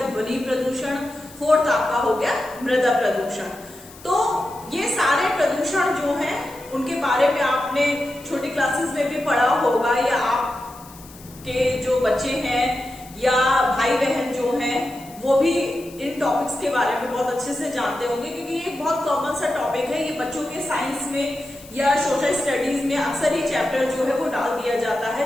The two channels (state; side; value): noise; left; hiss, 21 dB below the sound